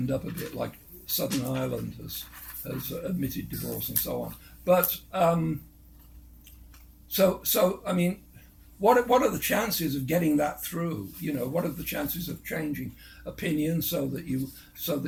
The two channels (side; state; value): both; identical; correlation 1.00